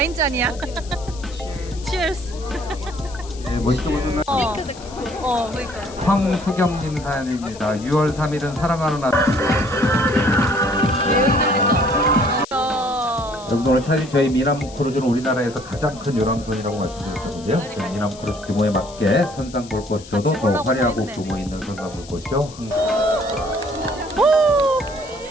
잔이야. Cheers. 네, 멋있게 보는 그러니까. 황소경님 사연입니다. 6월 3일은 사랑하는 날. 여러분 오늘 사실 저희 미남 크루즈는 우리나라에서 가장 큰 요람선이라고 말씀드렸었는데요. 저희 미남 크루즈 규모에 맞게 선상 볼 것이어도 더 화려하고 규모 있는 선상 볼 것이요.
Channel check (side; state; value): left; noise; hiss, 19 dB below the sound